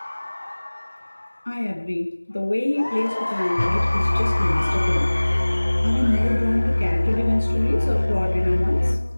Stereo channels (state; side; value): inverted; both; correlation -1.00